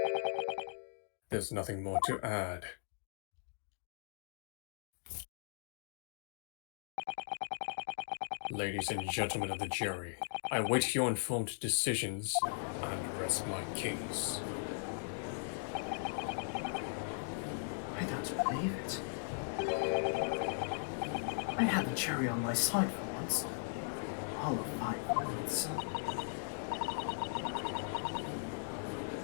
There's nothing more to add. Ladies and gentlemen of the jury, I await your informed decisions and rest my case. I don't believe it. I had the cherry on my side for once. All of 5 minutes.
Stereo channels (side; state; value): right; silent; digital silence